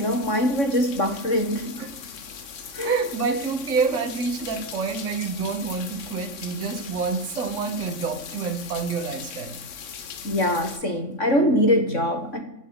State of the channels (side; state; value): right; late; 3.6 ms